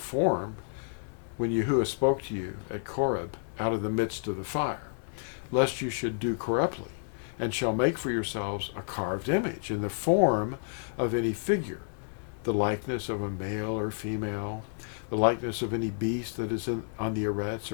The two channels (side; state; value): right; silent; digital silence